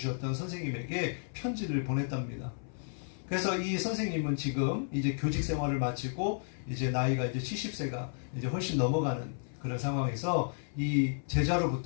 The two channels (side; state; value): right; silent; 56 dB below the other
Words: 선생님에게 편지를 보냈답니다. 그래서 이 선생님은 지금 이제 교직 생활을 마치고 이제 나이가 이제 70세가 이제 훨씬 넘어가는 그런 상황에서 이